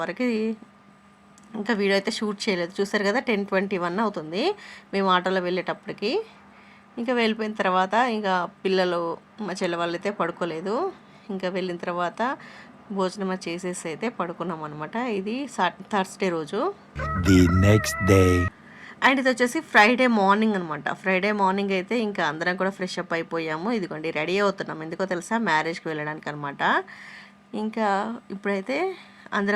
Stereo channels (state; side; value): identical; both; correlation 1.00